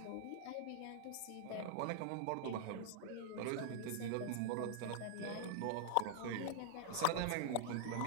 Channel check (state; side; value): different; both; correlation -0.01